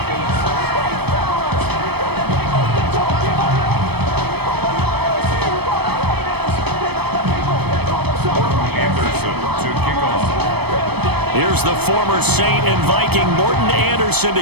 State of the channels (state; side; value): late; left; 0.97 ms